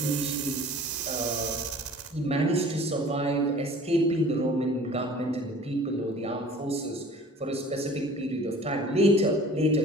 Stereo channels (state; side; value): normal; both; correlation 0.46